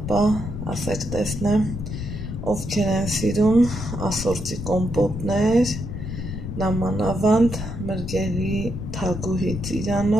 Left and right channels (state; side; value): noise; left; rumble, 6 dB below the sound